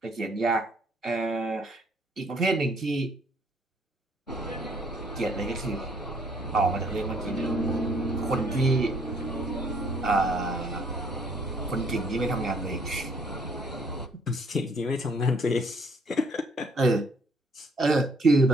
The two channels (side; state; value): both; normal; correlation 0.64